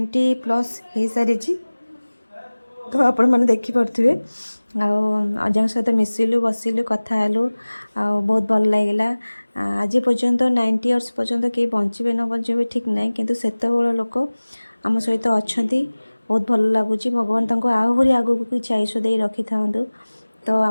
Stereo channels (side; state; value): both; inverted; correlation -1.00